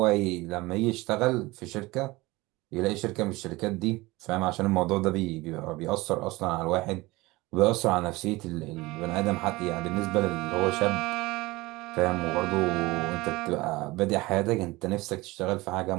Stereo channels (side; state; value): left; quieter; 21.2 dB